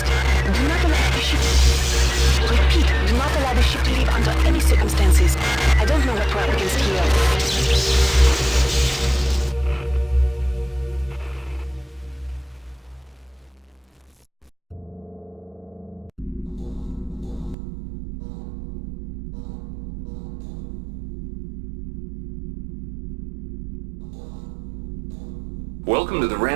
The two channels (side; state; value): left; drops out; at 17.6 s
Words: Do not allow the ship... Repeat, do not allow the ship to leave under any circumstances. I don't know what we're up against here. Welcome to the